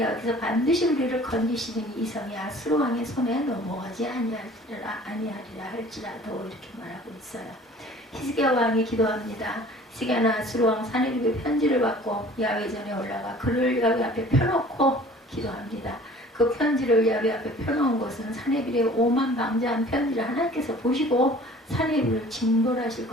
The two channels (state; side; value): normal; both; correlation 0.49